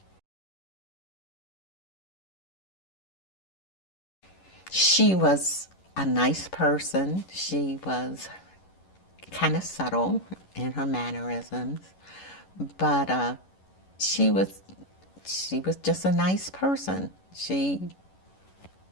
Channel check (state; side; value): late; right; 11 ms